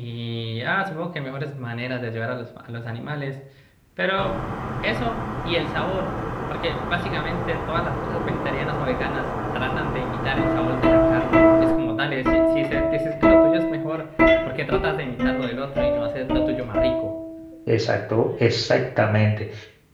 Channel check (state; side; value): identical; both; correlation 1.00